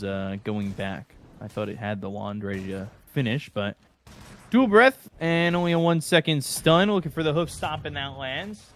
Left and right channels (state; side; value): identical; both; correlation 1.00